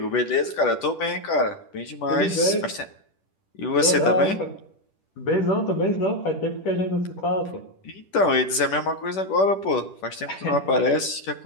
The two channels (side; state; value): right; late; 10 ms